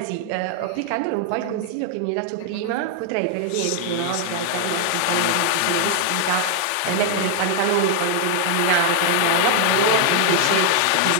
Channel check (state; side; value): different; both; correlation 0.00